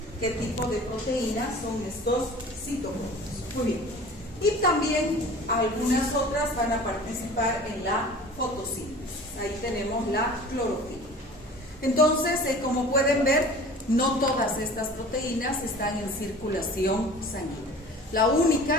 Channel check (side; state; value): both; normal; correlation 0.43